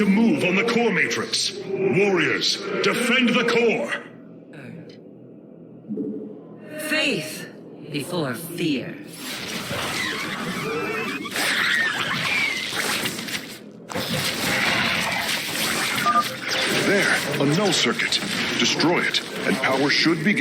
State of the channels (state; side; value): identical; both; correlation 1.00